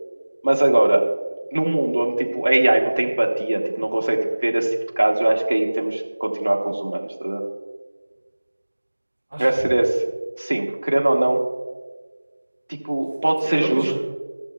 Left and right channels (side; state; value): both; inverted; correlation -1.00